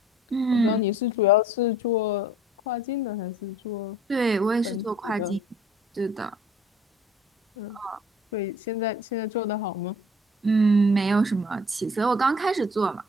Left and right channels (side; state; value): both; normal; correlation 0.53